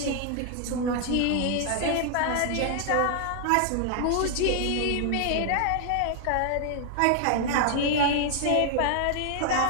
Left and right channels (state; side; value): different; both; correlation 0.00